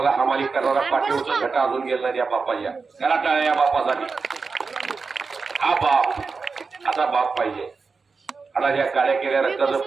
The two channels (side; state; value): left; quieter; 4.6 dB